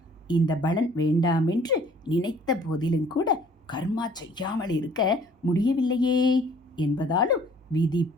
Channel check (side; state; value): both; normal; correlation 0.55